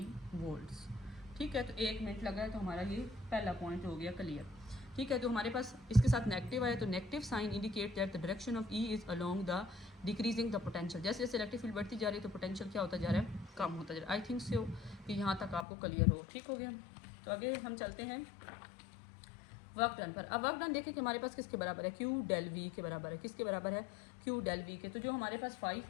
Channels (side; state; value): right; drops out; at 15.7 s